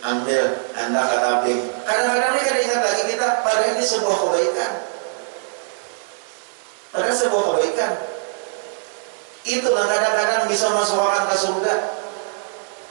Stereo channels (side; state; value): left; silent; 64 dB below the other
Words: anda katabing. Kadang-kadang ini kada ingat lagi kita pada ini sebuah kebaikan. Pada sebuah kebaikan. Itu kadang-kadang bisa masukkan ke surga.